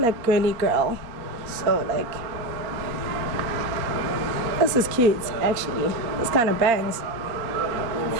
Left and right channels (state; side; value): late; left; 4.3 ms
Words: girly girl. So like, this is cute actually. This kind of bangs.